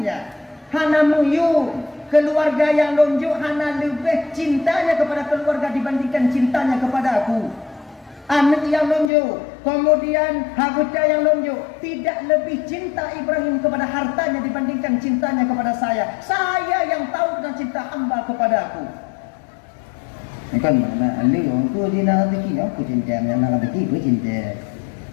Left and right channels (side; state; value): right; drops out; at 9.1 s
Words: Hana muyun, keluarga yang lonjok, hana lebih cintanya kepada keluarga dibandingkan cintanya kepada aku. Anak yang lonjok, kemudian harta yang lonjok, tidak lebih cinta Ibrahim kepada hartanya dibandingkan cintanya kepada saya. Saya yang tahu tentang cinta hamba kepada aku. Ini kan mana? Ali orang tu dia nak rezeki, aku cinta, nak rezeki, aku cinta.